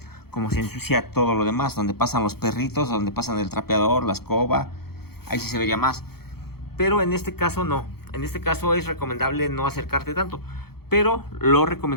como se ensucia todo lo demás, donde pasan los perritos, donde pasan el trapeador, la escoba, ahí sí se vería más. Pero en este caso no, en este caso es recomendable no acercarte tanto, pero lo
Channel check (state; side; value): late; right; 0.96 ms